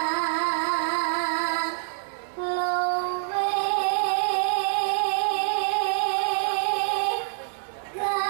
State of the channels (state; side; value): silent; left; 61 dB below the other